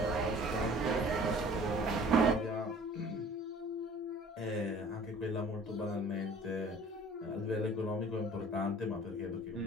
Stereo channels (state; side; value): normal; both; correlation 0.49